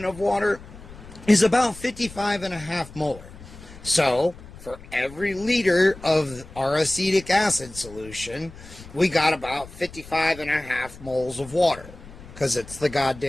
of water is about 55.5 molar. So, for every liter of our acetic acid solution, we got about 55.5 moles of water, because it's the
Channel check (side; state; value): left; noise; rumble, 18 dB below the sound